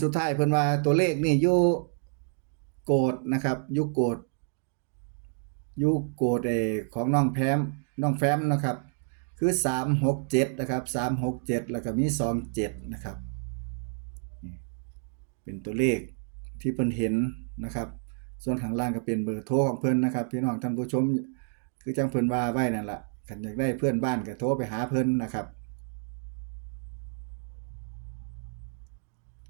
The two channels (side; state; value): left; silent; 58 dB below the other